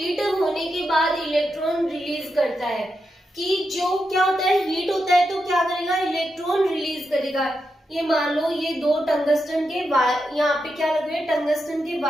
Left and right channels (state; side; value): normal; both; correlation 0.86